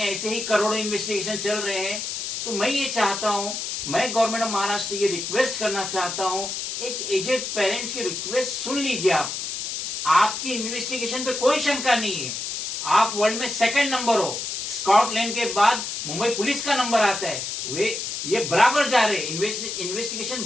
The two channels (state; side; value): noise; left; hiss, 4 dB below the sound